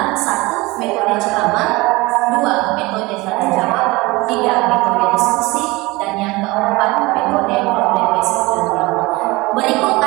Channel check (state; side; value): quieter; left; 22.3 dB